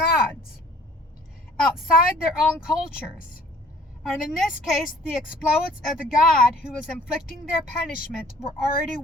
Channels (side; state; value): both; normal; correlation 0.54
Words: outside their own cultures. And in this case, the exploits of the God who was inflicting their punishment were already